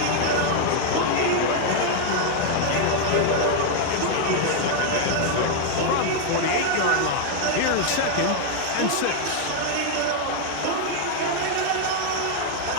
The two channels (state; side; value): different; both; correlation 0.00